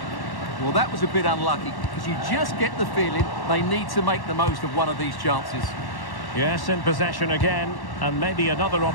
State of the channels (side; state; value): right; late; 1.1 ms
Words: Well, that was a bit unlucky because you just get the feeling they need to make the most of one of these chances. Yes, in possession again, and maybe another